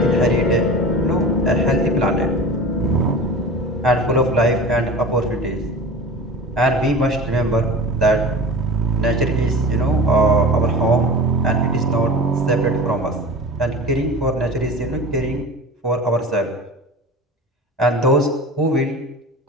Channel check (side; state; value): both; normal; correlation 0.34